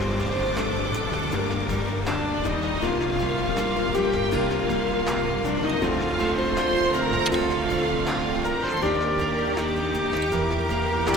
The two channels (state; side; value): normal; both; correlation 0.56